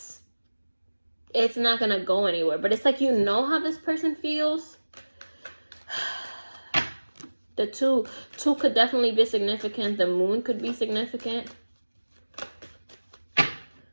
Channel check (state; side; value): inverted; both; correlation -1.00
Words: it's not gonna go anywhere. But it's like you know how this person feels. The two could definitely be significant. The moon could be significant.